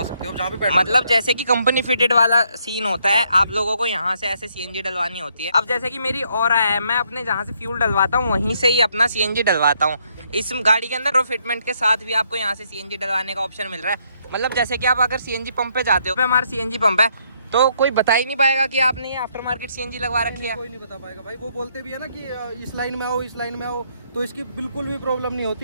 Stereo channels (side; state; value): both; inverted; correlation -0.72